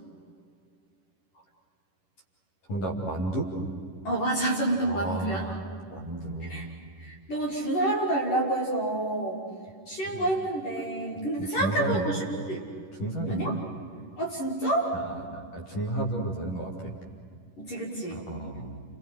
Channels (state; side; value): late; right; 11 ms